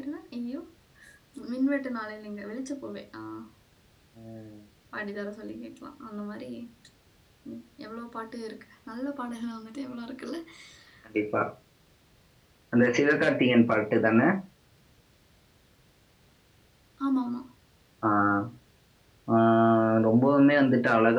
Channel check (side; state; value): both; identical; correlation 1.00